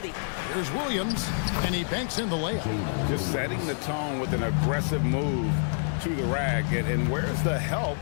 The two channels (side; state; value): right; silent; digital silence